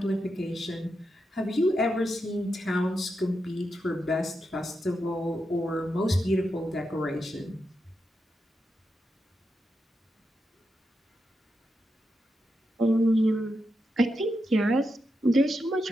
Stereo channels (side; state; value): both; normal; correlation 0.86